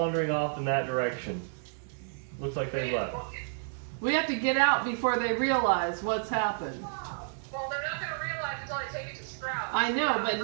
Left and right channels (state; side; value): silent; left; digital silence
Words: off in that direction. Looks like they left. We have to get out before they realize what's happened. Well, they're not gonna realize until I take it to Strahd. I know, but